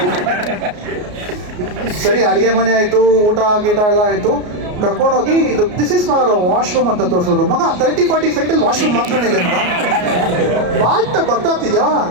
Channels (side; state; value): left; late; 33 ms